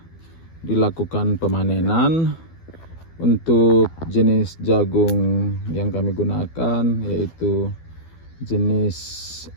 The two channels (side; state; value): right; late; 12 ms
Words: dilakukan pemanenan. Untuk jenis jagung yang kami gunakan yaitu jenis